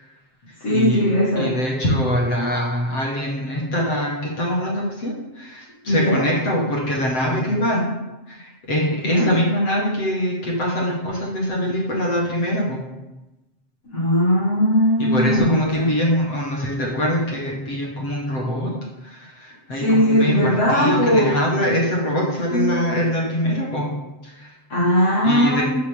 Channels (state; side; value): late; right; 7.7 ms